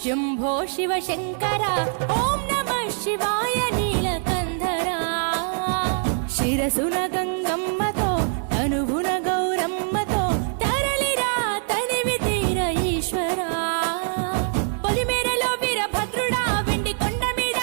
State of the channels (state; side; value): silent; left; 63 dB below the other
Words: శంభో శివ శంకర ఓం నమః శివాయ నీలకంధర శిరసున గంగమ్మతో తనువున గౌరమ్మతో తరలిరా తనివి తీర ఈశ్వర పొలిమేరలో వీరభద్రుడా వెండి కొండ మీద